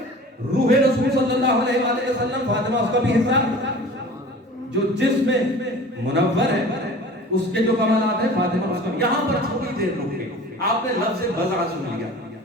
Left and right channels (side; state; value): both; normal; correlation 0.42